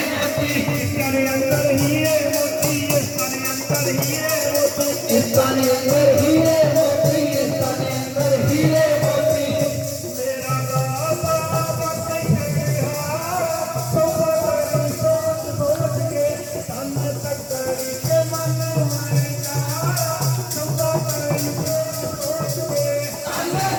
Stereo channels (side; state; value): both; identical; correlation 1.00